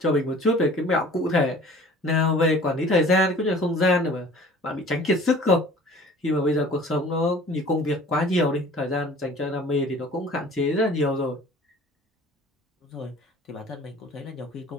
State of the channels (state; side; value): normal; both; correlation 0.47